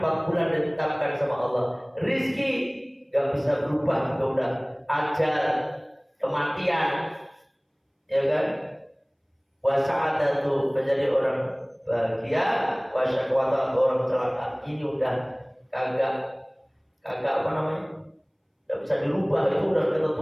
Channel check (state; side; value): identical; both; correlation 1.00